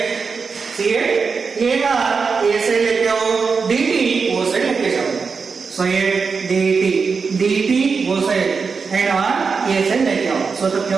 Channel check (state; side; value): quieter; left; 5.2 dB